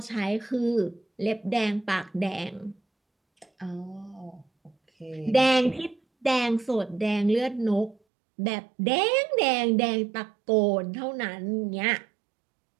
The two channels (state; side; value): drops out; left; at 8.0 s